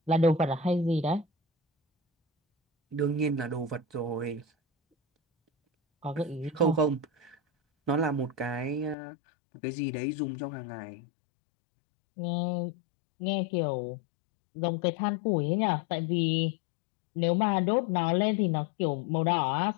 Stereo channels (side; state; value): right; drops out; at 9.0 s